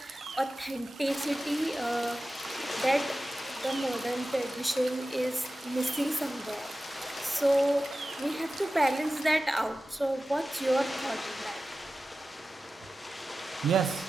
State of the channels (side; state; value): both; normal; correlation 0.94